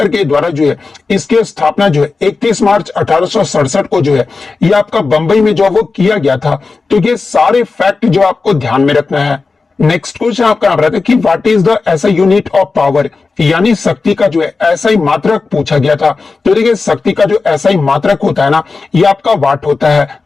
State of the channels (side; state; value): right; quieter; 4.2 dB